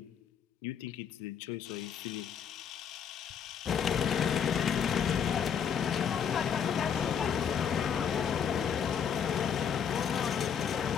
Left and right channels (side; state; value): right; quieter; 7.6 dB